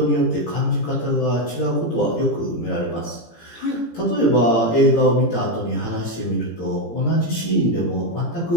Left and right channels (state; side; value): late; right; 18 ms